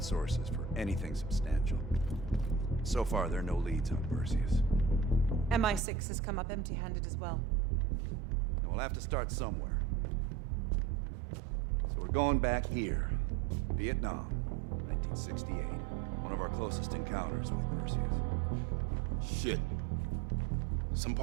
sources for anything substantial. So far, there are no leads on Perseus. MI6 has come up empty-handed as well. And we'll have to start somewhere. So we're going back here. Vietnam, 1968. One of our closest encounters with Perseus. Shit. Some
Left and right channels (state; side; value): drops out; left; at 5.8 s